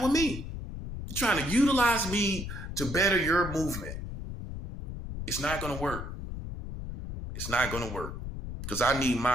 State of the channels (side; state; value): left; noise; rumble, 7 dB below the sound